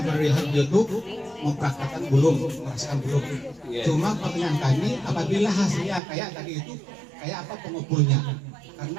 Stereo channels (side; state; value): left; drops out; at 6.0 s